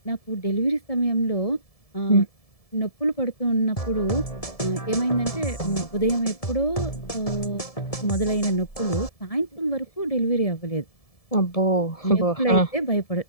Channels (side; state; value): right; late; 1.7 ms